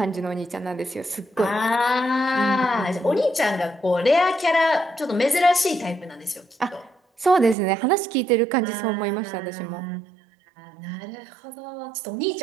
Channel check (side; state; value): left; drops out; at 7.6 s